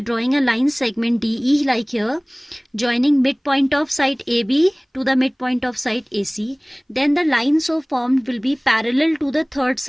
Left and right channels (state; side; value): identical; both; correlation 1.00